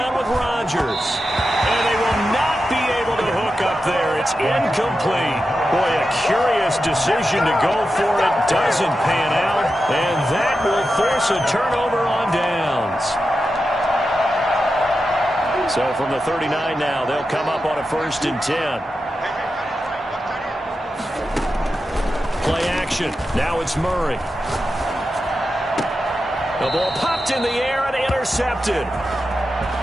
with Rodgers. And they will not be able to hook up there. It's incomplete. Boy, a curious decision to go for it. Doesn't pan out. And that will force a turnover on downs. So from the 39 now, they'll come up on a 1st and 10. Play action. Now it's Murray. The ball popped in the air and intercepted.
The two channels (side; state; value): both; normal; correlation 0.90